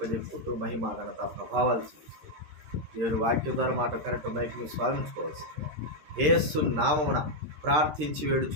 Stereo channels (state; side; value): late; left; 13 ms